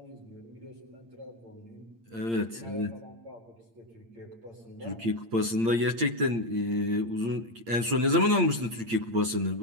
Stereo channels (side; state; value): left; late; 8.7 ms